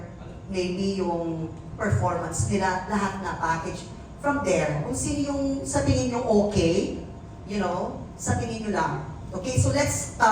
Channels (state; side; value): identical; both; correlation 1.00